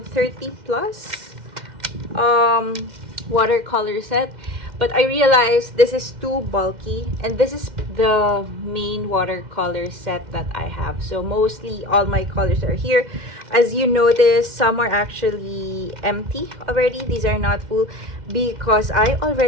30 plus watercolor set, but I realized this is too bulky, and this is the main watercolor set that I have. So mostly all my colors are here. As you notice, some are actually empty already. These are not full because I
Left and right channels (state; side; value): late; left; 2.1 ms